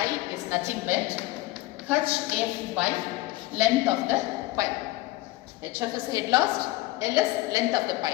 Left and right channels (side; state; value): right; quieter; 18.7 dB